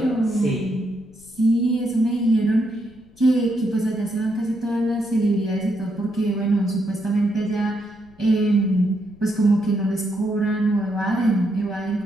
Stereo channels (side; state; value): left; noise; rumble, 27 dB below the sound